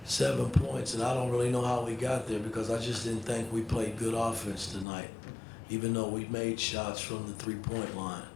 points, and I don't really know how we got there because I just didn't think we played good offense tonight, even though we made shots from the three-point line.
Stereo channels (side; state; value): right; drops out; at 4.9 s